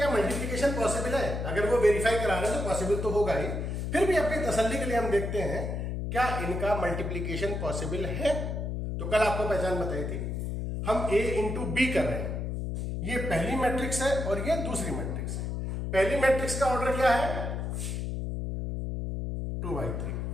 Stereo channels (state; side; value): noise; left; hum, 3 dB below the sound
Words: मल्टीप्लिकेशन पॉसिबल है। अगर वो वेरीफाई करा रहे हैं तो पॉसिबल तो होगा ही, फिर भी अपनी तसल्ली के लिए हम देखते हैं क्या इनका मल्टीप्लिकेशन पॉसिबल है। तो कल आपको पहचान बताई थी, हम ए इंटू बी कर रहे हैं। ये पहली मैट्रिक्स है और ये दूसरी मैट्रिक्स है। पहली मैट्रिक्स का ऑर्डर क्या है 2/3।